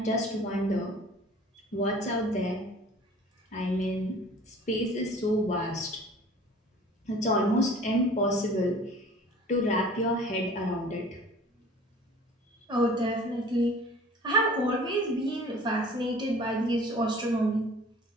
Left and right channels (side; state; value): both; normal; correlation 0.47